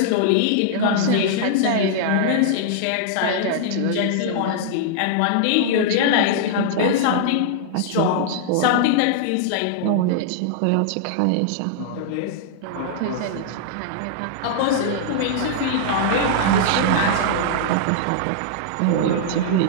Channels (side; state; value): both; different; correlation -0.01